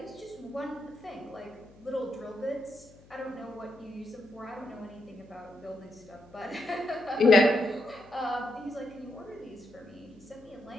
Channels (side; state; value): left; noise; hum, 24 dB below the sound